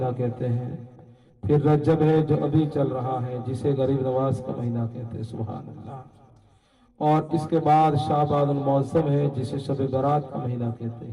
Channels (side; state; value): both; identical; correlation 1.00